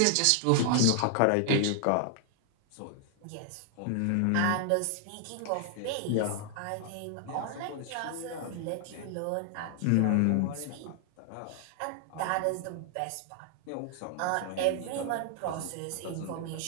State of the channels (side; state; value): both; different; correlation 0.00